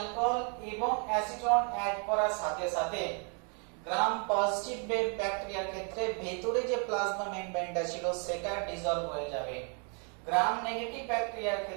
এবং অ্যাসিটোন অ্যাড করার সাথে সাথে গ্রাম পজিটিভ ব্যাকটেরিয়ার ক্ষেত্রে ভেতরে যে প্লাজমা মেমব্রেনটা ছিল সেটা ডিসলভ হয়ে যাবে। গ্রাম নেগেটিভ ব্যাকটেরিয়ার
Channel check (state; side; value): quieter; left; 38.5 dB